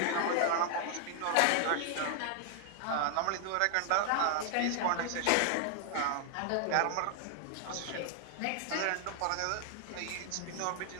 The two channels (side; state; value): both; different; correlation 0.00